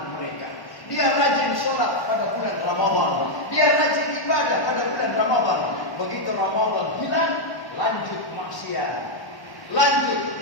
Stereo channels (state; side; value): late; right; 1.1 ms